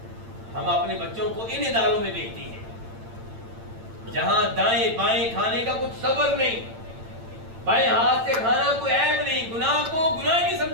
ہم اپنے بچوں کو ان اداروں میں بھیجتے ہیں جہاں دائیں بائیں کھانے کا کچھ صبر نہیں، بائیں ہاتھ سے کھانا کوئی عیب نہیں، گناہ کو گناہ نہیں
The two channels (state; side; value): late; left; 8.8 ms